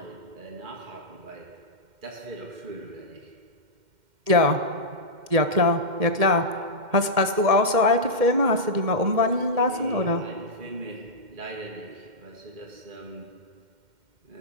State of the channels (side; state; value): left; late; 2.1 ms